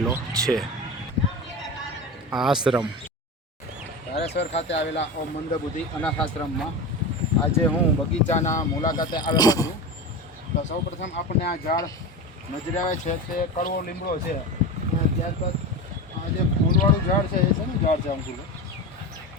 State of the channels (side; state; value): both; normal; correlation 0.25